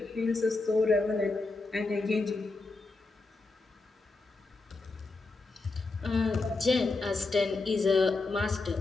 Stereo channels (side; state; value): right; quieter; 3.5 dB